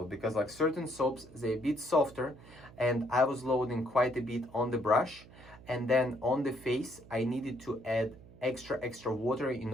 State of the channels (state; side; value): noise; right; hum, 20 dB below the sound